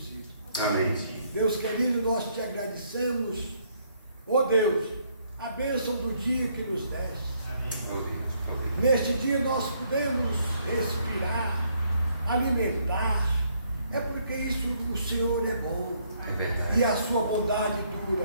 Amém. Deus querido, nós te agradecemos, ó Deus, a bênção do dia que nos deste. Neste dia nós podemos respirar, alimentar. É porque isso o Senhor é bom. É verdade. E a sua bondade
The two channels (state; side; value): inverted; both; correlation -0.70